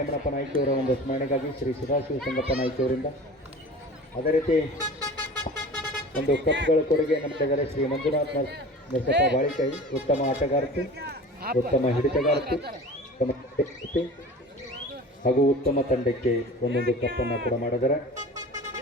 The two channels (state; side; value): normal; both; correlation 0.38